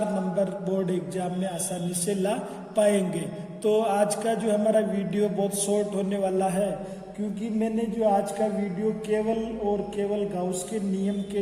नंबर बोर्ड एग्जाम में आसानी से ला पाएंगे। तो आज का जो हमारा वीडियो बहुत शॉर्ट होने वाला है, क्योंकि मैंने जो आज का वीडियो केवल गाउस के नियम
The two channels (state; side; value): identical; both; correlation 1.00